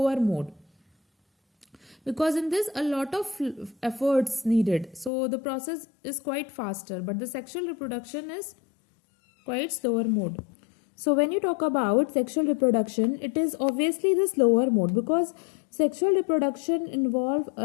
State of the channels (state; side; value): drops out; right; at 5.1 s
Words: mode, because in this a lot of efforts needed. So the process is quite faster, but the sexual reproduction is quite slower mode. So when you talk about sexual reproduction, it is obviously the slower mode, because sexual reproduction involves